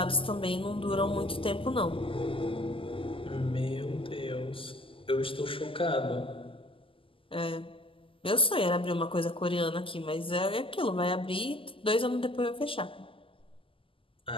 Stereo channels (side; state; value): right; late; 0.25 ms